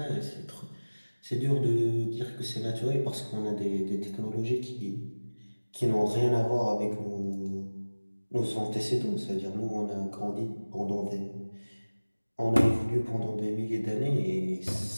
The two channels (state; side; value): inverted; both; correlation -1.00